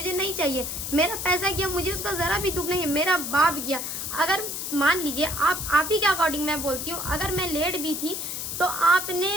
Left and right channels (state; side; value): noise; left; hiss, 5 dB below the sound